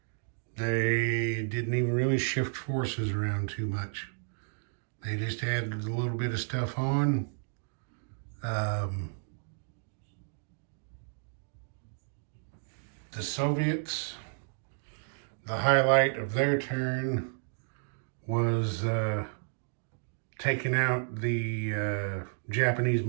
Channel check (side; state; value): left; silent; digital silence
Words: They didn't even really shift forces around too much. They just added a little bit of stuff on. The Soviets, the highlight of their turn was taking out the Japanese